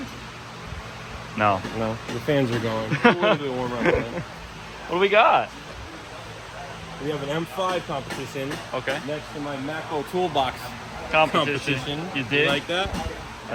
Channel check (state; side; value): identical; both; correlation 1.00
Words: No. No, the fans are going. It's a little bit warmer outside. What do we got? We have an M5 competition. Okay. Next to my Macro Toolbox Competition. You did? You like that?